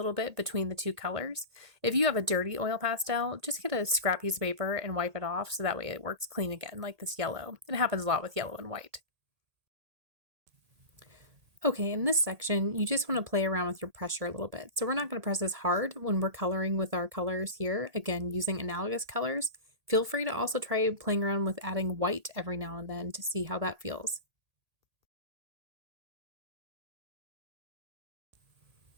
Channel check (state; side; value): late; left; 1.8 ms